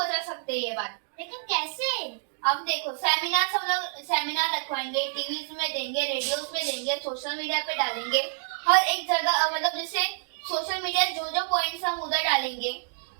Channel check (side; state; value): left; silent; digital silence